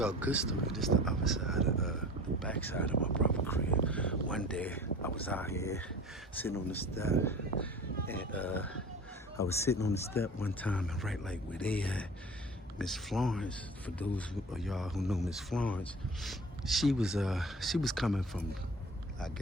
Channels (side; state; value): both; normal; correlation 0.40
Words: a good story. This is the other side of the back side of my brother's crib. One day I was out here sitting on the step, and I was sitting on the step one time, and right like where they at, Miss Florence. For those of y'all who know Miss Florence, she was coming from, I